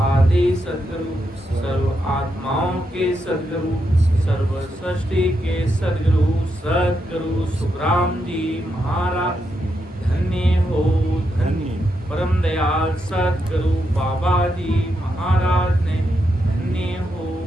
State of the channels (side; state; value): both; normal; correlation 0.83